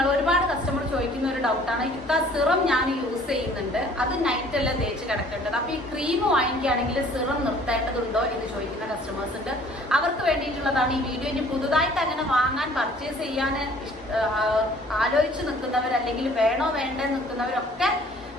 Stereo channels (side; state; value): both; normal; correlation 0.54